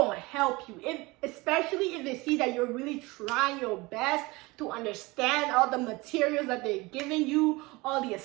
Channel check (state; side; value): quieter; left; 23.2 dB